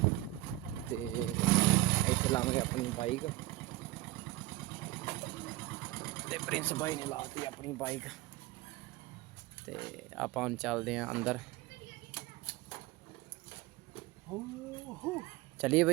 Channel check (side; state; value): left; quieter; 17.8 dB